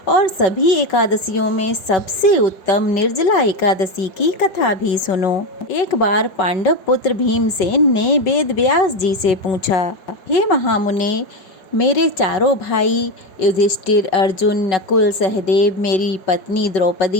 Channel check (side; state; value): right; late; 5.3 ms